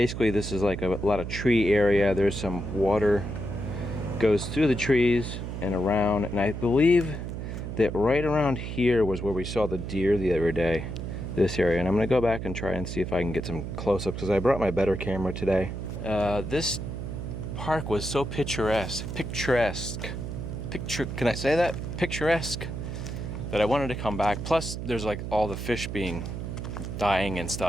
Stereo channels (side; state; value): right; noise; hum, 6 dB below the sound